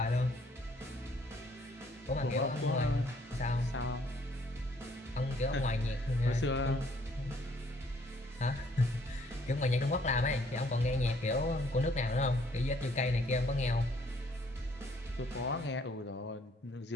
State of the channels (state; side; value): normal; both; correlation 0.64